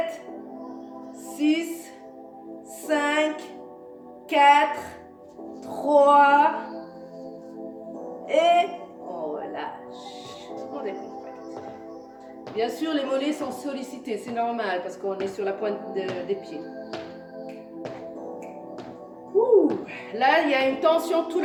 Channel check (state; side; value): identical; both; correlation 1.00